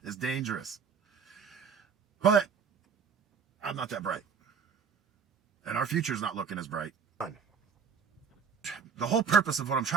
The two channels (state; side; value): quieter; left; 6.3 dB